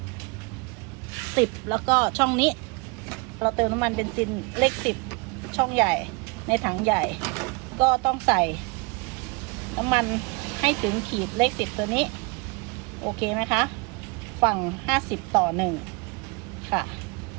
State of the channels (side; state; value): left; quieter; 28.0 dB